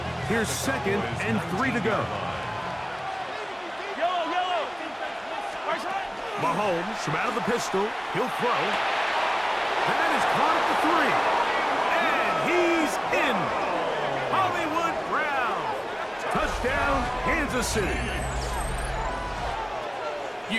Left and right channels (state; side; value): identical; both; correlation 1.00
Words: Here's 2nd and 3 to go. Mahomes from out of the pistol. He'll throw. That is caught at the 3. And he's in. Hollywood Brown. Touchdown, Kansas City.